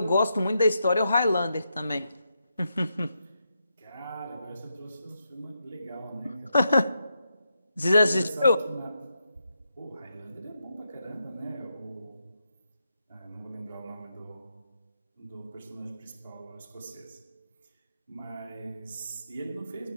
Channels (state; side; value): inverted; both; correlation -0.84